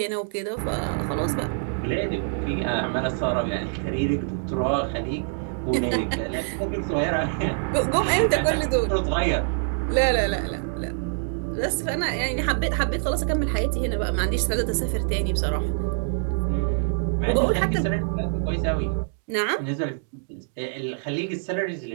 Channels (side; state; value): left; silent; digital silence